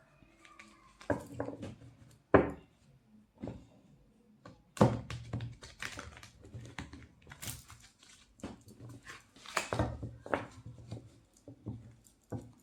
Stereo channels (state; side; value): identical; both; correlation 1.00